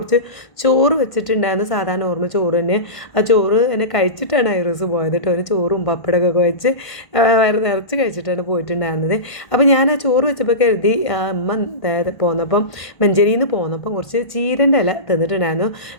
ചോറ് വെച്ചിട്ടുണ്ടായിരുന്നു. സാധാരണ ഓർമ്മ ചോറ് തന്നെ. ആ ചോറ് തന്നെ കഴിച്ചിട്ടാണ് ഐറൂസ് പോയത് കേട്ടോ. ഒരു ചോറും പപ്പടമൊക്കെ വെച്ച് വയറ് നിറച്ച് കഴിച്ചിട്ടാണ് പോയിട്ടുണ്ടായിരുന്നത്. അപ്പോൾ ഞാൻ ആ ചോറ് വെച്ചപ്പോൾ കരുതി അമ്മ പോന്നപ്പം മഞ്ചേരിയിൽ നിന്ന് പോന്നപ്പം കുറച്ച് ചീരൻ്റെ ഇല തന്നിട്ടുണ്ടായിരുന്നു.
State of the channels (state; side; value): late; right; 1.5 ms